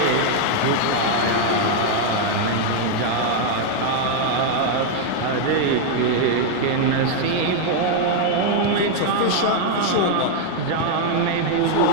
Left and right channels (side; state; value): both; different; correlation 0.00